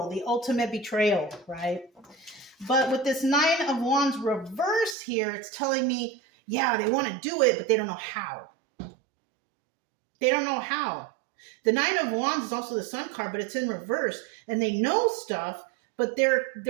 The ultimate betrayal, right? But with this Nine of Wands reverse here, it's telling me, yeah, they want to do it, but they don't know how. They don't know how. The Nine of Wands is also the Sun card, but it's in reverse. And they know stuff, but their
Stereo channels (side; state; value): left; drops out; at 5.0 s